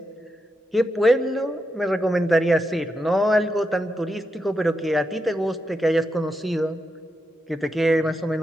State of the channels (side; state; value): both; normal; correlation 0.85